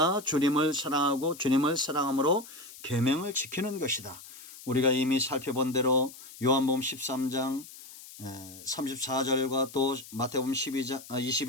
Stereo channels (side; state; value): left; noise; hiss, 17 dB below the sound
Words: 주님을 사랑하고 주님을 사랑함으로 계명을 지키는 것이다. 우리가 이미 살펴본 대로 요한복음 13장 34절과 또 마태복음 22장